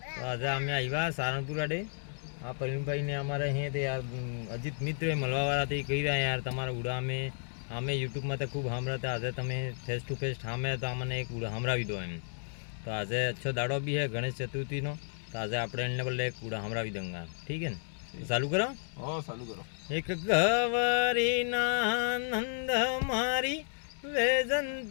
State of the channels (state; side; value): silent; right; digital silence